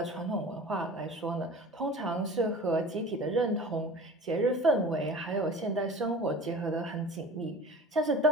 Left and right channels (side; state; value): both; normal; correlation 0.40